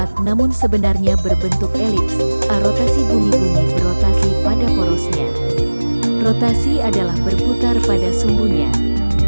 namun sebenarnya berbentuk elips. Rotasi bumi berotasi pada porosnya. Rotasi adalah berputar pada sumbunya.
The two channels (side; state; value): both; inverted; correlation -1.00